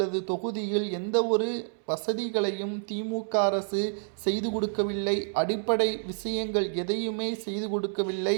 தொகுதியில் எந்த ஒரு வசதிகளையும் திமுக அரசு செய்து கொடுக்கவில்லை. அடிப்படை விஷயங்கள் எதையுமே செய்து கொடுக்கவில்லை.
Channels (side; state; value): left; silent; 59 dB below the other